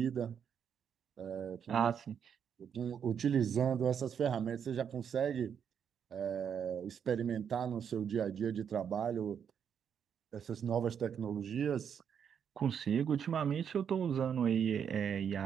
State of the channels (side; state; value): left; quieter; 7.8 dB